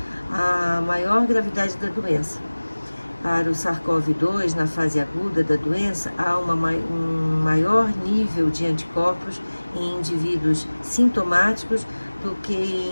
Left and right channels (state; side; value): inverted; both; correlation -1.00